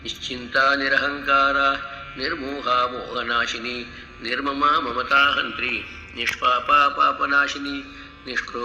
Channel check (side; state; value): both; identical; correlation 1.00